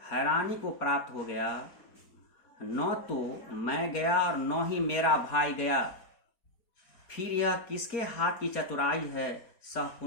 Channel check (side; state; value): right; late; 4.3 ms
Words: हैरानी को प्राप्त हो गया। न तो मैं गया और न ही मेरा भाई गया, फिर यह किसके हाथ की चतुराई है। सह